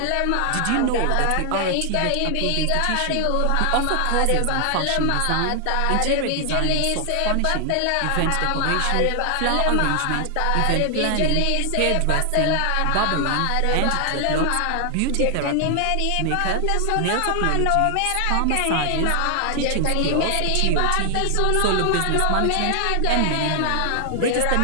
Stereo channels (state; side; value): different; both; correlation 0.00